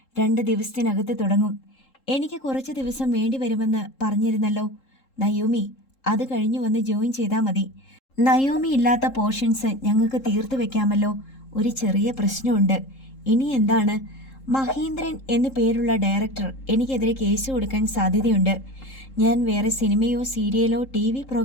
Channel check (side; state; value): right; late; 3.7 ms